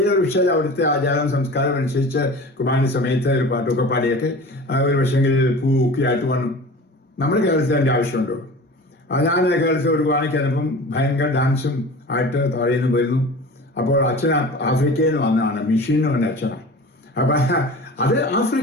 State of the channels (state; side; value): normal; both; correlation 0.37